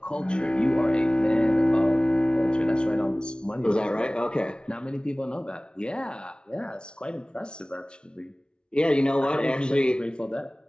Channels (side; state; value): right; late; 0.055 ms